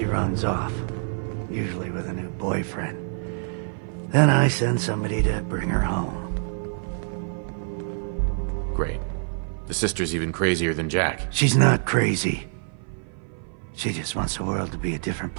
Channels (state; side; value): silent; left; 56 dB below the other